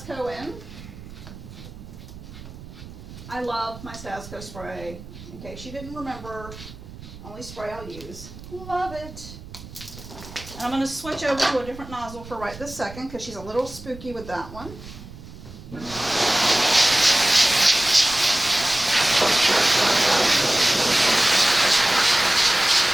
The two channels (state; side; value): noise; right; rumble, 15 dB below the sound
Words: in. I love my Stasco spray. In case you didn't remember, only spray I'll use. Love it. And I'm going to switch over to a different nozzle for right this second because she's a little spooky with that one.